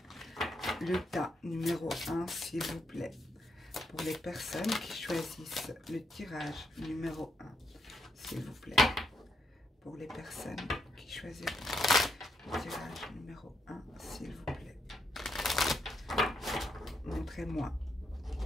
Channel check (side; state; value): both; normal; correlation 0.78